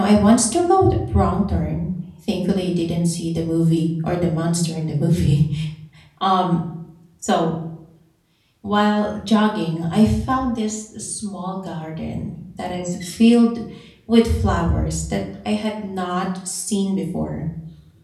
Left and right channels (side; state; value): both; identical; correlation 1.00